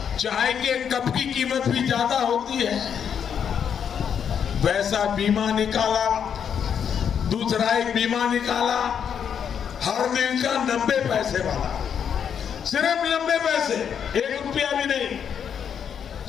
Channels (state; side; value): quieter; right; 7.9 dB